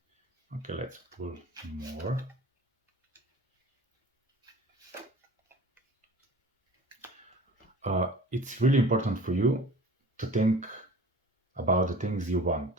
Okay, let's pull more. It's really important for you to think about the things you want.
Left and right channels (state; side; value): normal; both; correlation 0.43